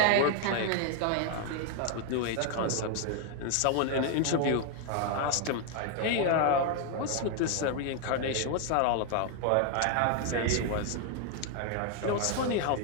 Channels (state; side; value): different; both; correlation 0.00